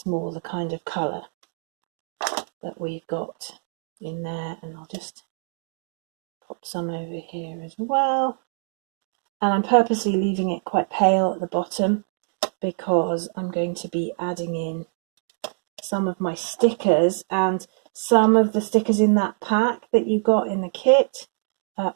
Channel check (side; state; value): left; silent; digital silence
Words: more the kind of colour that we've got in there. And I'll just pop some over here as well. And I'm purposely leaving it quite pale at the bottom because I'm going to be adding in some of my stickers, and some of the stickers in that pack that you got in the kit